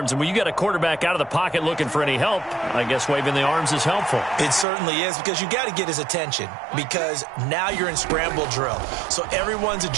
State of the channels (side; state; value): left; drops out; at 4.7 s